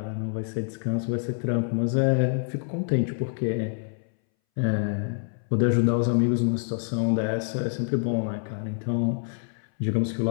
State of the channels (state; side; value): silent; right; 61 dB below the other